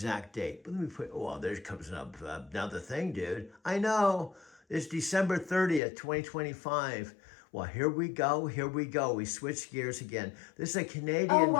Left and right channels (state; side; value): drops out; right; at 5.8 s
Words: date. But let me put, oh, there comes up another thing, dude. I know. It's December 30th, 2025. Well, here we go. We switch gears again. This is a Canadian. Oh,